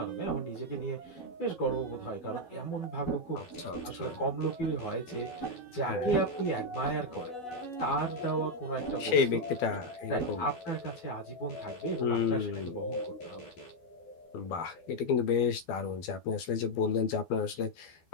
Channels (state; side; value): late; right; 12 ms